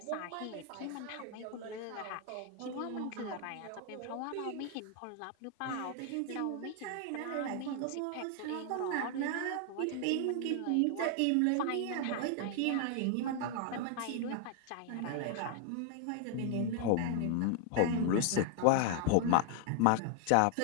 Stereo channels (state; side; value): different; both; correlation 0.00